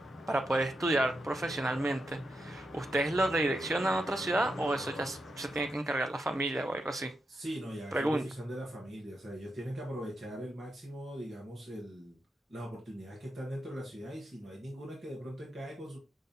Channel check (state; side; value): normal; both; correlation 0.85